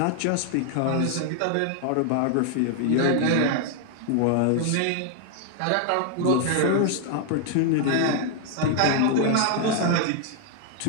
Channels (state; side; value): different; both; correlation 0.00